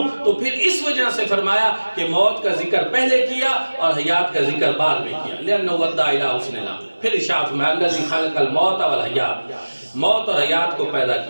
تو پھر اس وجہ سے فرمایا کہ موت کا ذکر پہلے کیا اور حیات کا ذکر بعد میں کیا، لأنہ ادى الی حسن العمل۔ پھر ارشاد میں الذی خلق الموت والحیات، موت اور حیات کو پیدا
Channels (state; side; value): inverted; both; correlation -1.00